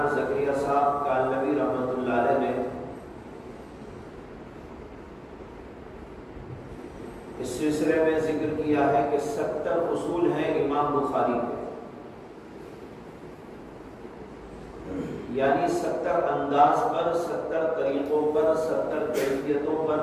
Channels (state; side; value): identical; both; correlation 1.00